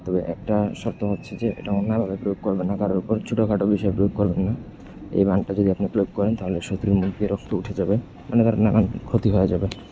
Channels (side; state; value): both; identical; correlation 1.00